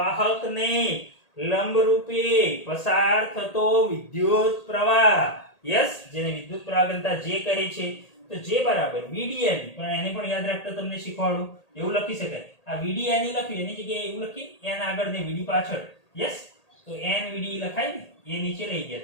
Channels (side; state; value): right; late; 1.8 ms